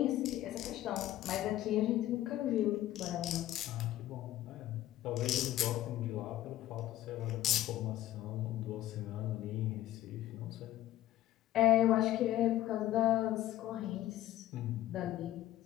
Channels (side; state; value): right; quieter; 14.0 dB